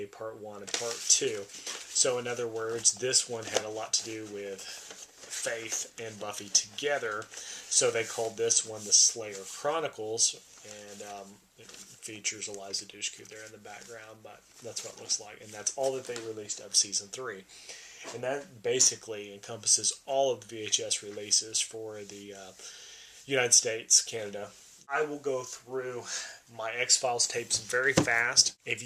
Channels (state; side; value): identical; both; correlation 1.00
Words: Part 1 and Part 2. So, in other words, this one had a lot to do with Faith and Buffy together. So they called this one the Slayer Chronicles, and it features Eliza Dushku there in the background, but that's what it looks like. And that's all that they released of season 3. And that basically encompasses all of the VHS releases for the United States, Canada. I will go through my X-Files tapes very fast. If